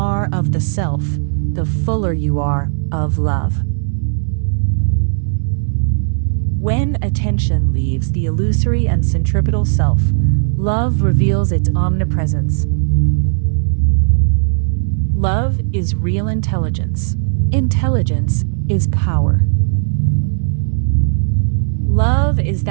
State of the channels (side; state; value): left; silent; digital silence